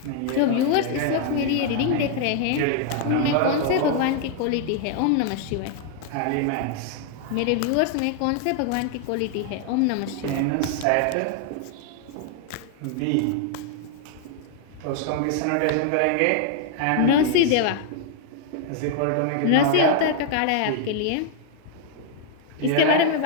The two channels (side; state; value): both; different; correlation 0.00